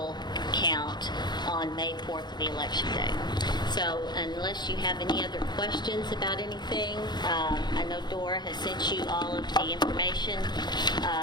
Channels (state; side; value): late; right; 0.21 ms